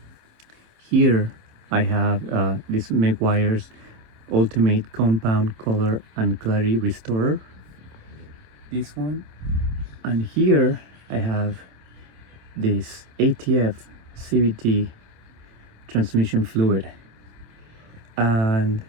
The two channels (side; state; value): left; late; 26 ms